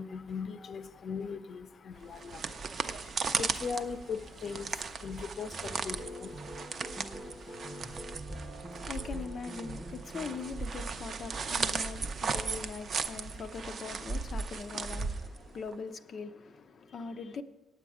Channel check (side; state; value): both; normal; correlation 0.76